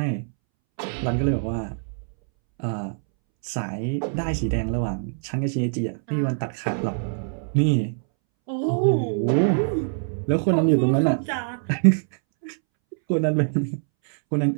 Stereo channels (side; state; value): left; silent; 63 dB below the other